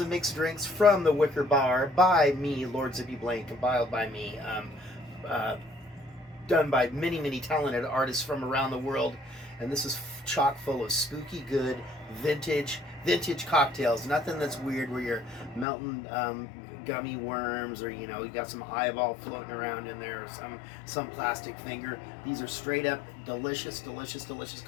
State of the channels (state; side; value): drops out; right; at 15.7 s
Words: and mixed drinks from the Wicker Bar by me, Lord Zippy Blaine, compiled by me. Done by many, many talented artists from around the world, and this is chock full of spooky, good, vintage cocktails. Nothing that's weird where you're melting gummy worms, or you got some eyeball floating around in there, or some plastic finger. These are straight up delicious